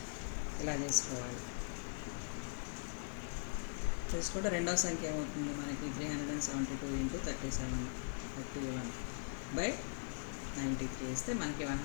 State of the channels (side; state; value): right; silent; digital silence